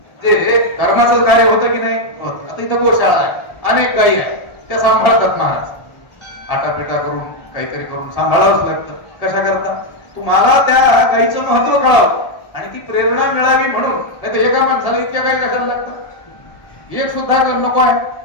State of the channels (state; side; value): late; right; 1.7 ms